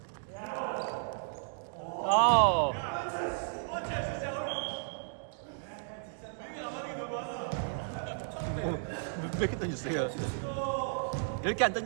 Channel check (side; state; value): left; silent; digital silence